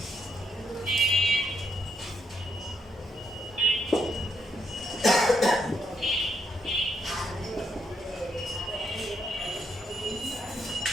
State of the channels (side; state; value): both; normal; correlation 0.77